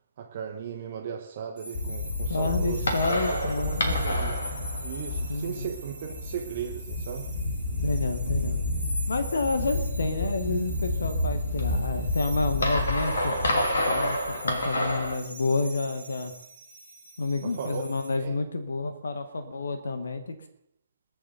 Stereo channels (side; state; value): both; inverted; correlation -0.73